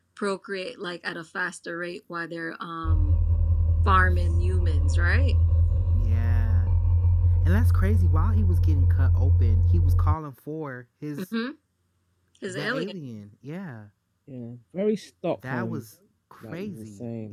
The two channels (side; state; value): both; identical; correlation 1.00